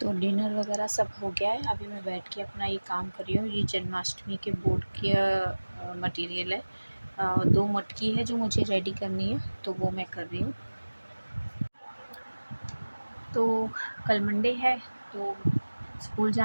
तो डिनर वगैरह सब हो गया है। अभी मैं बैठ के अपना ये काम कर रही हूँ। ये जन्माष्टमी के बोर्ड की मटेरियल है, 2 मटकी है जो मुझे रेडी करनी है, तो वो मैं कर रही हूँ। तो कल मंडे है, तो स्कूल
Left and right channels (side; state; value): both; inverted; correlation -1.00